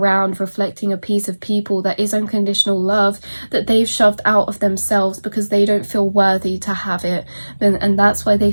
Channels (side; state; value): both; inverted; correlation -1.00